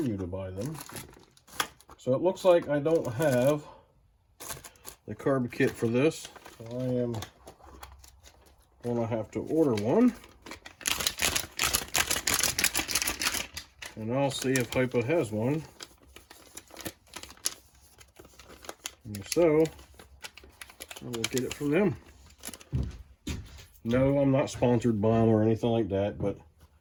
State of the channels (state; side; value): identical; both; correlation 1.00